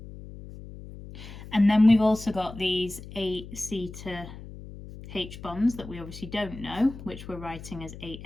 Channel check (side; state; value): left; noise; hum, 14 dB below the sound